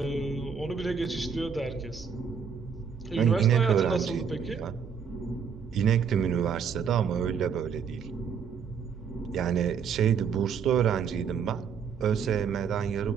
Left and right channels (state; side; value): quieter; left; 6.7 dB